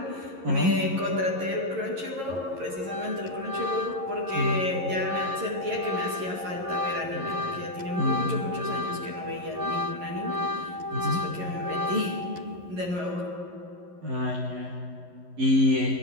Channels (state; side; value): late; left; 11 ms